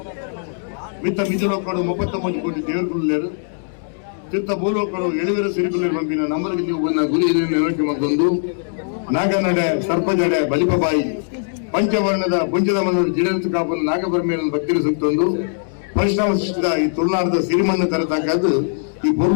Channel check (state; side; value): silent; right; digital silence